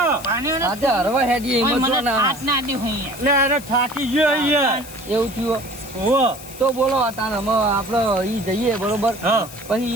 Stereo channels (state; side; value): noise; left; hiss, 16 dB below the sound